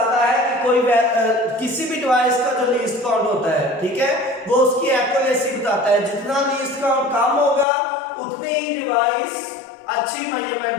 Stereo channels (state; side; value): drops out; right; at 7.7 s